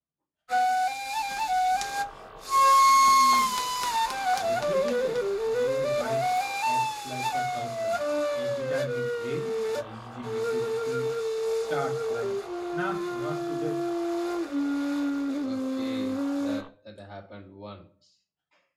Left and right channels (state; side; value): identical; both; correlation 1.00